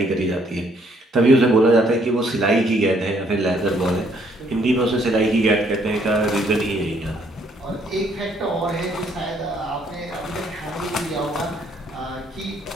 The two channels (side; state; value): both; normal; correlation 0.67